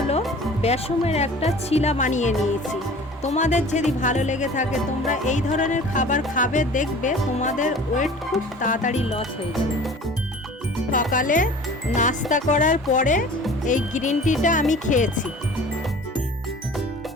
বেসমের একটা ছিলা বানিয়ে নিয়েছি। তোমাদের যদি ভালো লেগে থাকে তোমরা এই ধরনের খাবার খাবে, দেখবে তোমাদের ওয়েট খুব তাড়াতাড়ি লস হয়ে যাবে। সকালে নাস্তা করার পরে এই গ্রিন টিটা আমি খেয়েছি।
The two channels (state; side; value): normal; both; correlation 0.44